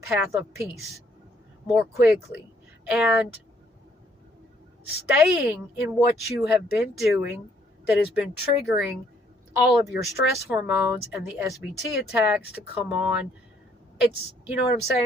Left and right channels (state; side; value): normal; both; correlation 0.67